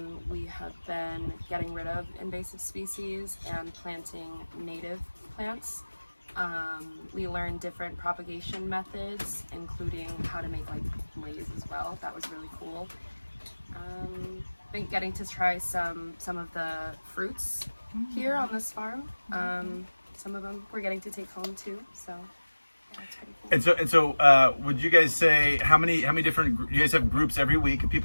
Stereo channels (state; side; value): inverted; both; correlation -1.00